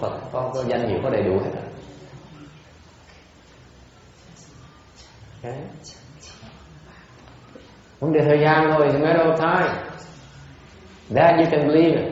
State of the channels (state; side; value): identical; both; correlation 1.00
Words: có danh hiệu, có đầy đủ hết rồi. Okay. Vấn đề thời gian thôi, it's a matter of time. That you can believe in.